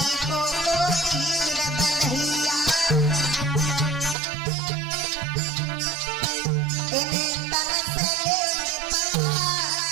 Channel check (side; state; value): left; drops out; at 4.2 s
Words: को तीर बलहिया, इन्हें तन से